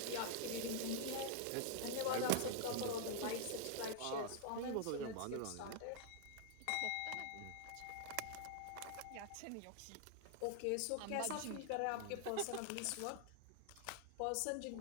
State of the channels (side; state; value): both; different; correlation -0.01